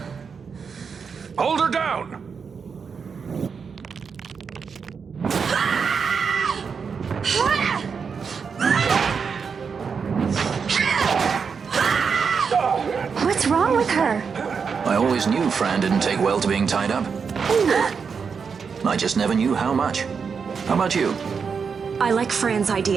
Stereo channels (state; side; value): quieter; left; 5.9 dB